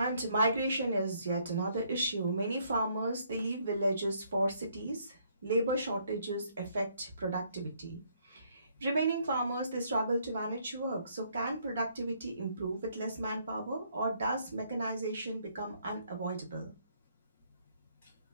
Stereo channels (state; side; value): inverted; both; correlation -0.68